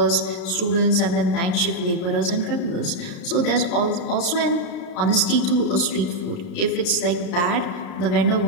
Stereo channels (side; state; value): right; late; 33 ms